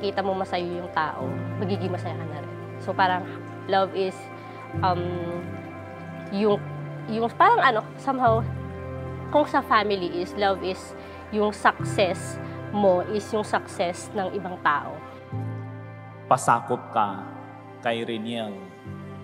mo masaya yung tao, magiging masaya ka na rin. So parang love is yung parang somehow kung sa family is love is yung success mo is yung success ng ibang tao. Pasakop ka kay Reniel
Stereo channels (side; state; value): both; identical; correlation 1.00